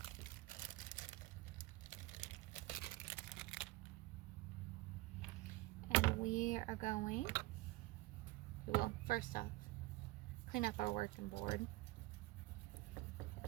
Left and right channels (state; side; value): quieter; left; 20.1 dB